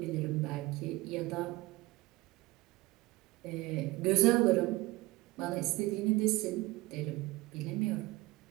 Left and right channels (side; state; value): left; quieter; 20.4 dB